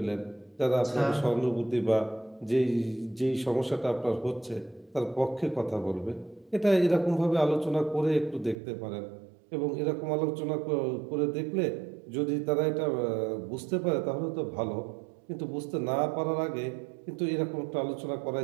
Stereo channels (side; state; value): left; drops out; at 8.6 s